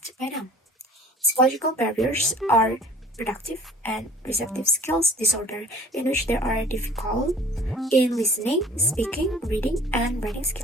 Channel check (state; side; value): normal; both; correlation 0.49